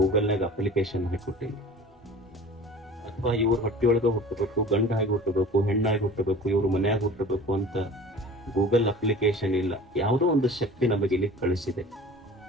ಅಪ್ಲಿಕೇಶನ್ ಹಾಕಿಕೊಟ್ಟಿಲ್ಲ, ಅಥವಾ ಇವ್ರ ಹೊಟ್ಟಿಯೊಳಗ ಹುಟ್ಟಬೇಕು, ಗಂಡಾಗಿ ಹುಟ್ಟಬೇಕು, ಹೆಣ್ಣಾಗಿ ಹುಟ್ಟಬೇಕು, ಇವ್ರ ಮನ್ಯಾಗ ಹುಟ್ಟಬೇಕು ಅಂತ ಗೂಗಲ್ ಅಪ್ಲಿಕೇಶನ್ ಇಲ್ಲ. ಯಾವುದೋ ಒಂದು ಶಕ್ತಿ ನಮಗೆ ಇಲ್ಲಿ ಕಳಿಸಿದೆ.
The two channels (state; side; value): normal; both; correlation 0.42